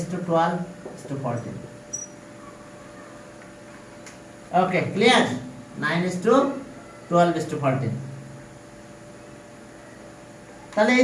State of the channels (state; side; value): identical; both; correlation 1.00